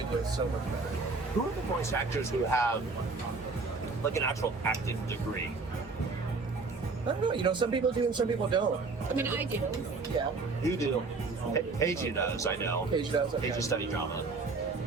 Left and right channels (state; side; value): quieter; left; 4.0 dB